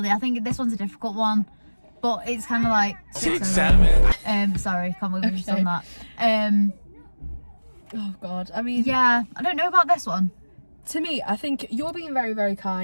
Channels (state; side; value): inverted; both; correlation -1.00